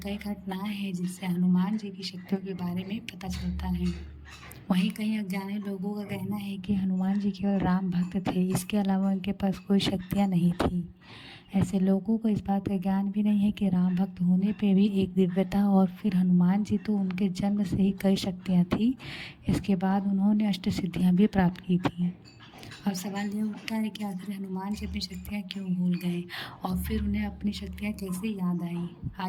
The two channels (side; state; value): both; identical; correlation 1.00